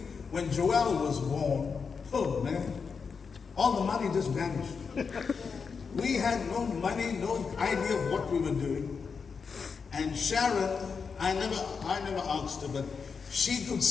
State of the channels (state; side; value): quieter; right; 5.6 dB